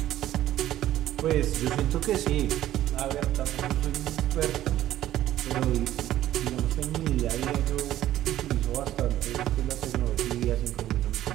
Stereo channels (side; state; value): left; quieter; 13.3 dB